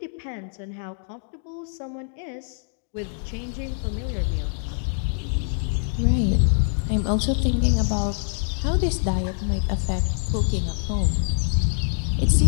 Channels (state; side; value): silent; right; digital silence